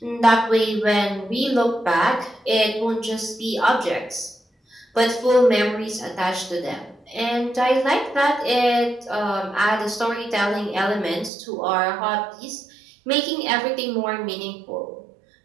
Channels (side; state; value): left; drops out; at 11.3 s